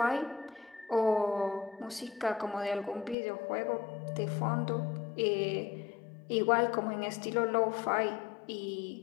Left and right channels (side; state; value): right; drops out; at 3.2 s